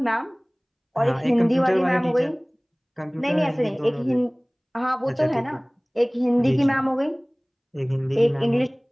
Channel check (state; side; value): identical; both; correlation 1.00